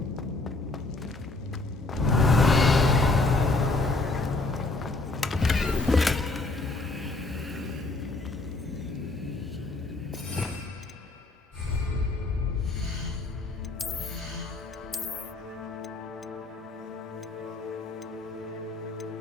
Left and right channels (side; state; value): right; quieter; 3.2 dB